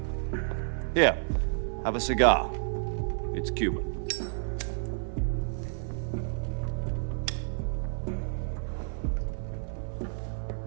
Here, have a cigar. It's Cuban.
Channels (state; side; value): silent; left; 58 dB below the other